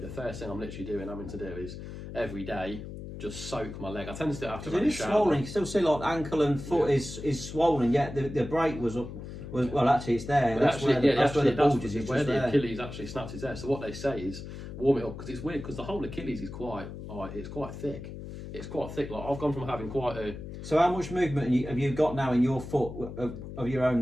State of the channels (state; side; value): noise; left; hum, 10 dB below the sound